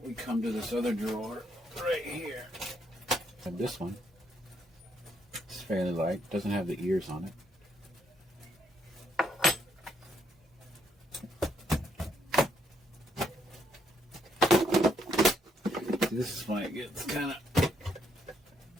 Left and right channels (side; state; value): both; normal; correlation 0.73